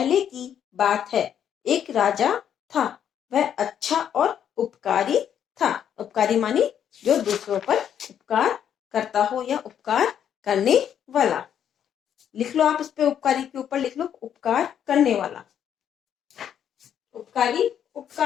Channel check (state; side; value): quieter; right; 9.2 dB